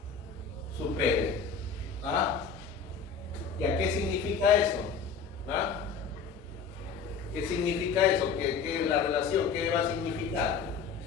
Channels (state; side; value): quieter; right; 5.9 dB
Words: Supere. ¿Ah? ¿Y a qué significa eso? ¿Ah? ¿Qué significa eso? ¿Qué la relación? ¿Qué va a significar?